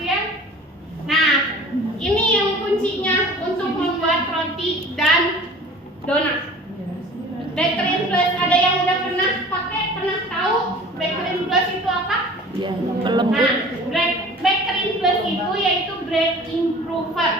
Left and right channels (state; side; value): normal; both; correlation 0.44